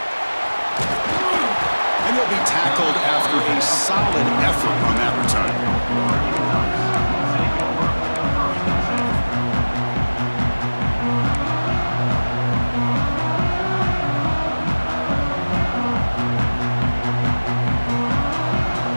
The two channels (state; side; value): inverted; both; correlation -1.00